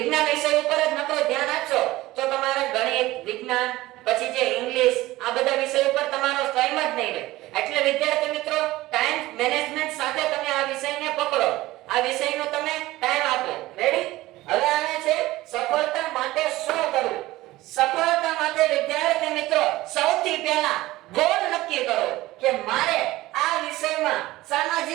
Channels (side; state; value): left; quieter; 17.8 dB